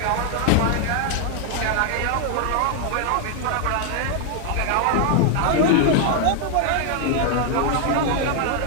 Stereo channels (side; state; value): both; different; correlation 0.00